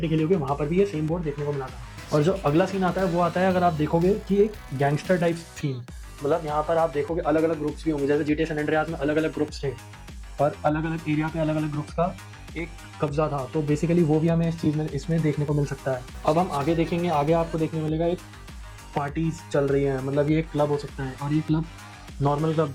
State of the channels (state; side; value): identical; both; correlation 1.00